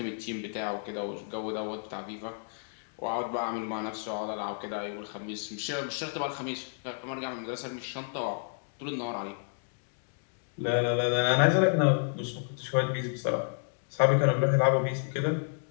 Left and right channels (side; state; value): right; silent; digital silence